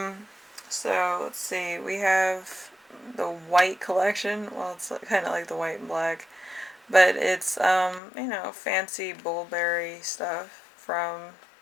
So let's see, we have the white collection. Well, it's kind of like the white and black, but it's fancy Bullberry stuff from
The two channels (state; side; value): drops out; right; at 8.0 s